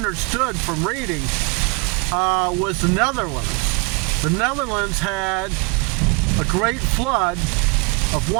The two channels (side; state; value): left; quieter; 29.8 dB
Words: from reading, was the Netherlands. The Netherlands had a great flood of